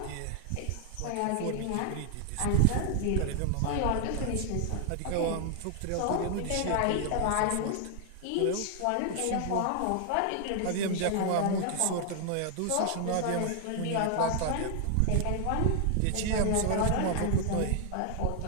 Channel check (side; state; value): both; different; correlation 0.00